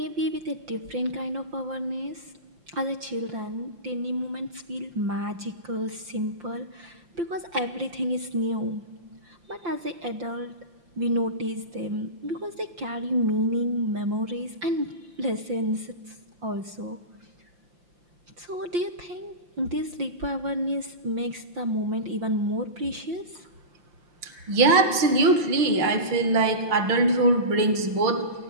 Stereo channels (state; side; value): late; left; 5.8 ms